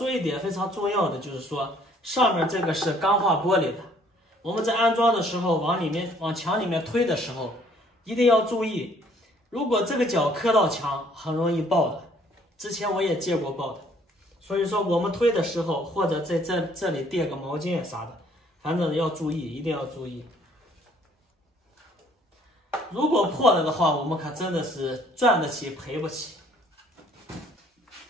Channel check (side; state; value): both; normal; correlation 0.61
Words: 一点非常重要的，就是说。上面这个是钢化玻璃的，我们在安装的时候往墙里面推的时候，一定要注意，如果这个角磕到墙，很容易爆的。之前我也见过爆的，所以说我们推的时候，或者在这里垫个毛巾啥的，反正要注意，一定要注意。如果破了的话，我们可真的是赚得起赔不起。